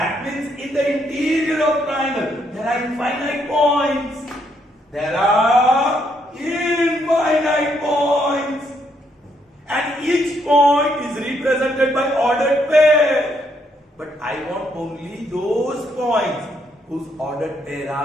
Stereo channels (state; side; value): normal; both; correlation 0.74